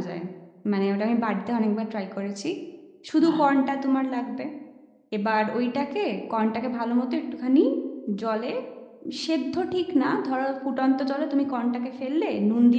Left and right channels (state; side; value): identical; both; correlation 1.00